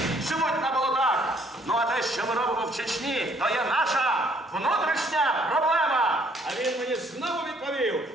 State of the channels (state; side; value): normal; both; correlation 0.64